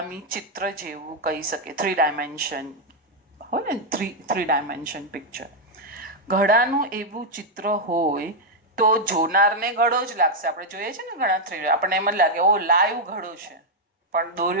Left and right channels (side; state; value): both; normal; correlation -0.01